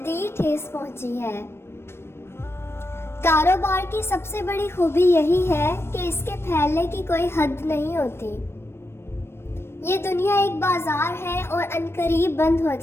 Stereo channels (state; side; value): late; right; 0.12 ms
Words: ठेस पहुंची है। कारोबार की सबसे बड़ी खूबी यही है कि इसके फैलने की कोई हद नहीं होती। ये दुनिया एक बाजार है और अनकरीब बंद हो